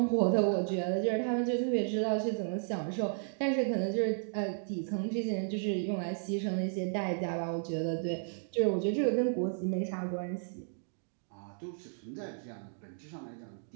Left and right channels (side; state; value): left; silent; digital silence